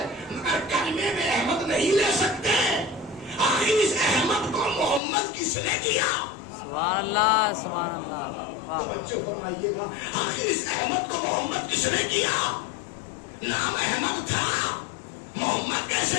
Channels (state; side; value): drops out; right; at 5.0 s